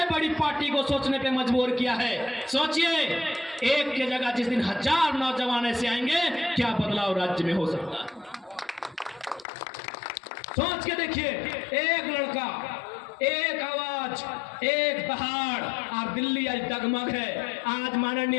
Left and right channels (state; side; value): drops out; right; at 9.5 s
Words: बड़ी पार्टी को सोचने पे मजबूर किया है। सोचिए, एक के जगह जिस दिन 1000 नौजवान ऐसे आएंगे, क्या बदलाव राज्य में हो सकता है। सोच के देखिए, एक लड़का, एक आवाज, एक दहाड़ और दिल्ली आज डगमग है। आज माननीय